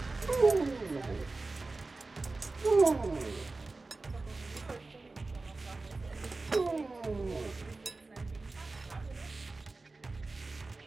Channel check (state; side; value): quieter; left; 3.5 dB